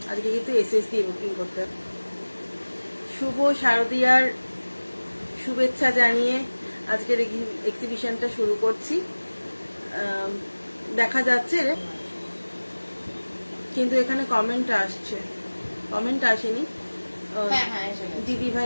আজকে কিন্তু এসএস দিয়ে বুকিং করতে হবে। শুভ শারদীয়ার শুভেচ্ছা জানিয়ে আজকের এক্সিবিশনটা শুরু করছি। দেখা যাচ্ছে কিন্তু এখানে কমেন্ট আসছে, কমেন্ট আসেনি। দিদি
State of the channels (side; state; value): both; inverted; correlation -1.00